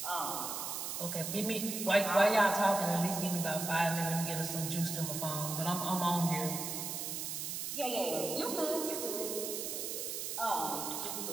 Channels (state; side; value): noise; right; hiss, 4 dB below the sound